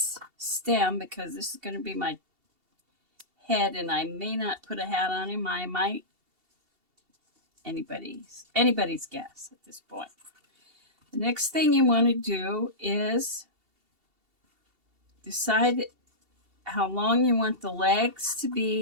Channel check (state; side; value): late; left; 2.7 ms